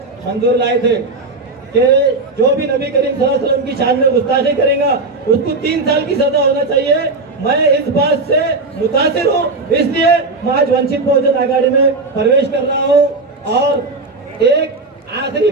मंजूर लाए थे कि जो भी नबी करीम सल्लल्लाहु अलैहि वसल्लम की शान में गुस्ताखी करेगा उसको 3 साल की सजा होना चाहिए। मैं इस बात से मुतासिर हूँ, इसलिए मैं आज वंचित बहुजन आघाड़ी में प्रवेश कर रहा हूँ। और एक आखिरी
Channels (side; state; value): left; quieter; 3.4 dB